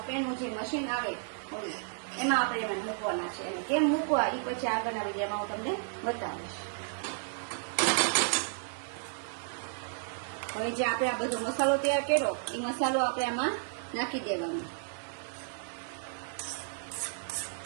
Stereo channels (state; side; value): silent; left; digital silence